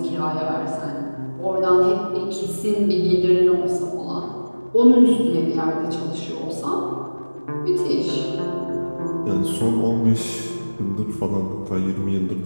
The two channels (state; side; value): inverted; both; correlation -1.00